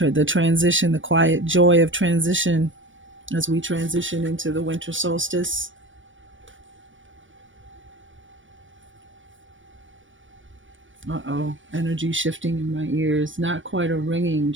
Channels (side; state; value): left; late; 0.56 ms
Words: the transition, the quiet joy of transition as we transition into the winter solstice. Uh-oh, energy shifting in my ears. Not quite a ringing,